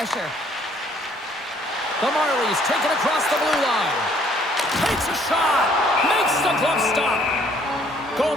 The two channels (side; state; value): both; normal; correlation 0.62